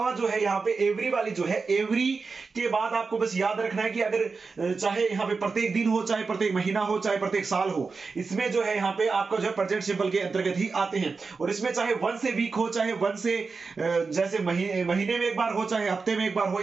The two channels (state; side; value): quieter; left; 4.5 dB